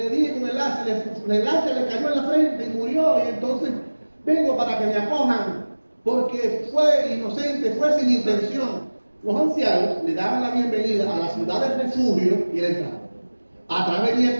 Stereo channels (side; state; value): both; inverted; correlation -1.00